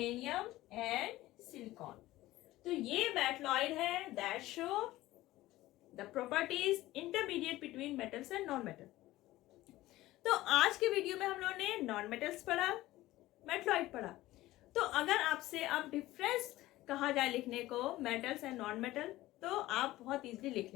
एंड सिलिकॉन। तो ये मेटलॉइड है that show the properties intermediate between metals and non metal. तो आज के वीडियो में हम लोगों ने नॉन मेटल्स पढ़ा, मेटलॉइड पढ़ा। तो अगर आपसे अब डिफरेंस कहा जाए लिखने को मेटल्स एंड नॉन मेटल, तो आप बहुत इजीली लिख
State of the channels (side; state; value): right; quieter; 16.8 dB